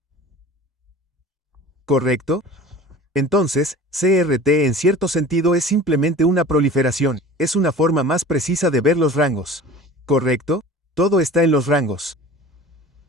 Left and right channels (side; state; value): both; normal; correlation 0.40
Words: ¿Correcto? Entonces, CRT en cierto sentido es simplemente una proliferación, es una forma más precisa de ver los rangos. ¿Correcto? Todo está en los rangos.